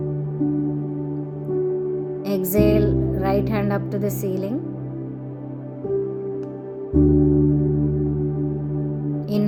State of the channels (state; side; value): identical; both; correlation 1.00